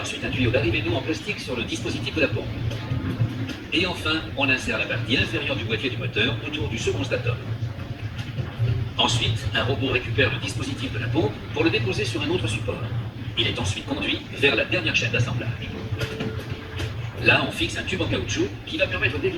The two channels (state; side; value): identical; both; correlation 1.00